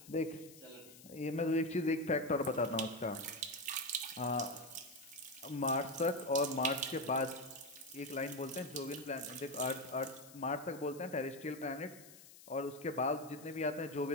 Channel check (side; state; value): left; noise; hiss, 19 dB below the sound